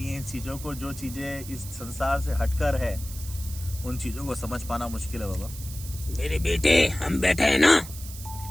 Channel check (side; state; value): right; noise; hiss, 13 dB below the sound